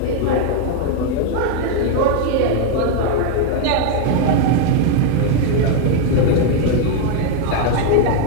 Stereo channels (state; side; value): different; both; correlation 0.00